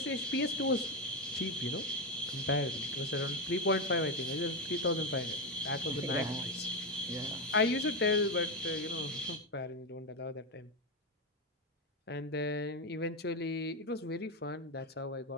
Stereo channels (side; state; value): both; normal; correlation 0.10